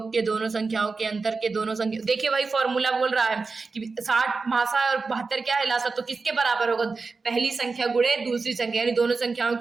के, दोनों संख्याओं के अंतर के, दोनों संख्या। देखिए वही फॉर्मूला बोल रहा है कि 60 मासा और 72 क्या है? लासा। तो किसके बराबर होगा? पहली संख्या गुणे दूसरी संख्या, यानी दोनों संख्याओं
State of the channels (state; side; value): quieter; left; 4.3 dB